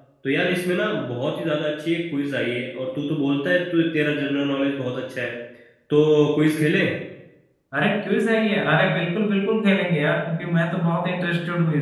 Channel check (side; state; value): both; identical; correlation 1.00